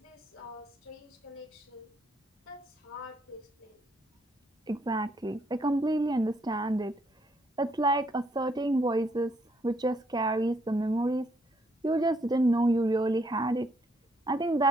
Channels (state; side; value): normal; both; correlation 0.71